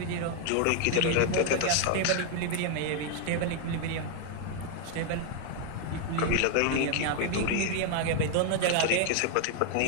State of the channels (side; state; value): both; different; correlation 0.00